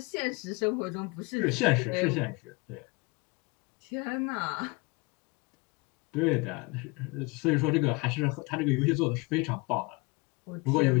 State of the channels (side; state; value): right; quieter; 26.2 dB